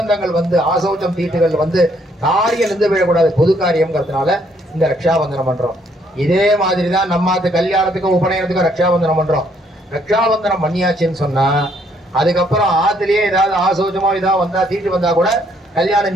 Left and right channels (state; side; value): normal; both; correlation 0.68